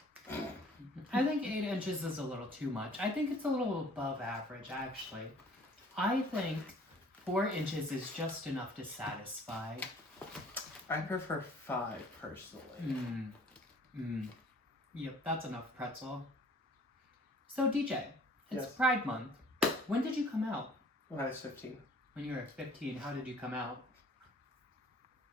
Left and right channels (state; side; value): normal; both; correlation 0.53